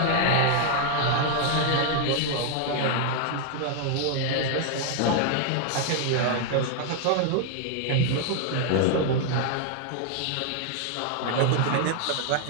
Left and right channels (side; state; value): both; different; correlation 0.00